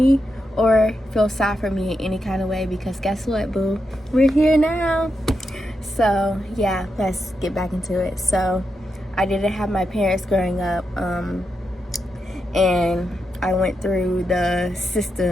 or feel sad for me in any kind of way, because guess what, boo? We're here now. So yeah, let's get back into it. So I didn't have my parents growing up, and I went through the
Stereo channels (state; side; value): normal; both; correlation 0.85